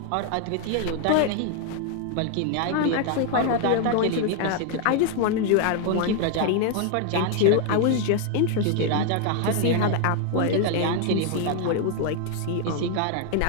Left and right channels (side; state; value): both; different; correlation 0.00